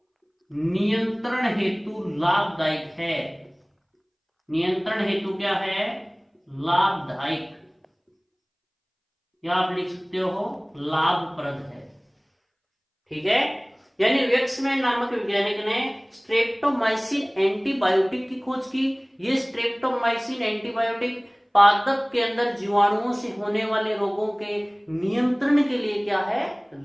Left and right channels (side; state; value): both; identical; correlation 1.00